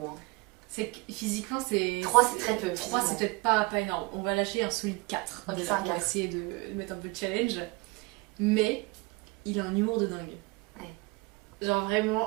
Hein. C'est que physiquement, c'est. 3 c'est très peu. 3, c'est physiquement. peut-être pas énorme. On va lâcher un solide 4. Ok, déjà, c'est un on va 4. essayer de mettre un peu de challenge. Mais il a un humour de dingue. Ouais. Genre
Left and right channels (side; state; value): left; quieter; 25.1 dB